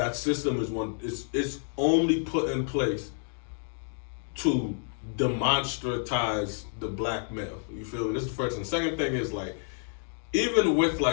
system is it's only put in place to demonstratize the black male. You feel me? This is the first thing. Second thing is like, even with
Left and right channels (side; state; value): right; silent; digital silence